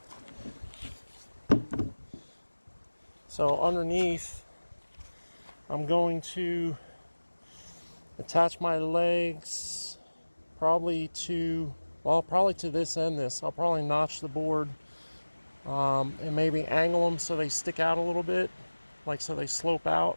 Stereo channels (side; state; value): both; inverted; correlation -1.00